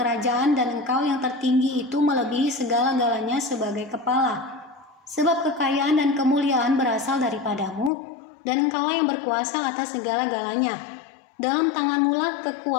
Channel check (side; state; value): right; drops out; at 7.9 s